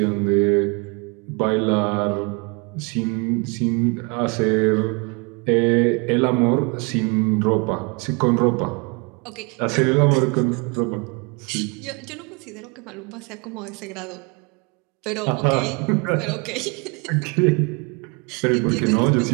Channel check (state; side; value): quieter; left; 31.4 dB